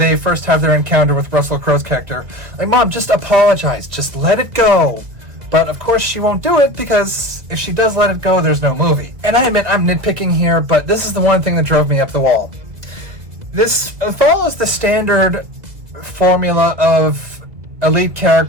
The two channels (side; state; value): left; late; 2.2 ms